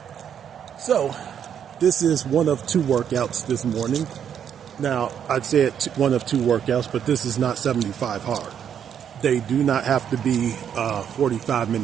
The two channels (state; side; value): quieter; left; 8.6 dB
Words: So, this is one of two workouts this morning. Now, I'd say it's one of two workouts, but this is not 75 hard. They do not have to be 45